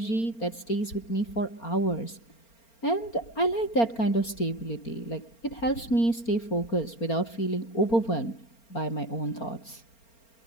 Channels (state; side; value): late; right; 4.4 ms